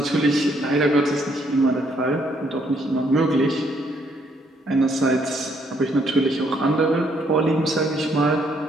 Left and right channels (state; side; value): normal; both; correlation 0.69